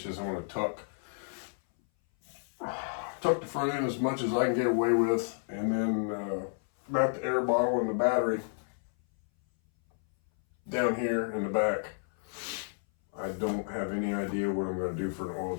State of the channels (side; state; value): right; silent; 57 dB below the other